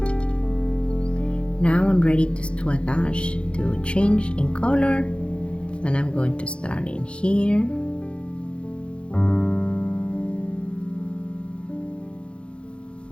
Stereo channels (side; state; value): right; late; 0.058 ms